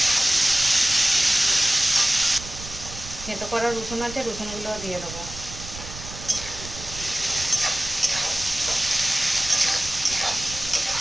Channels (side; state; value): right; noise; rumble, 12 dB below the sound